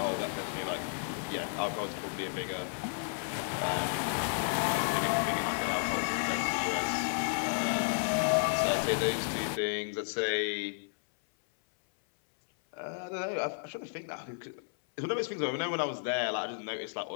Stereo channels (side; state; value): right; silent; 56 dB below the other